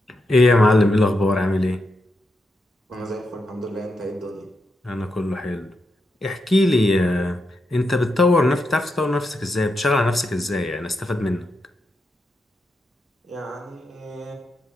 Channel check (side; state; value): both; normal; correlation 0.85